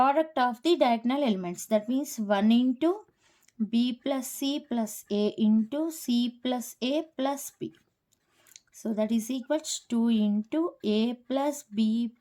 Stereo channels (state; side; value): identical; both; correlation 1.00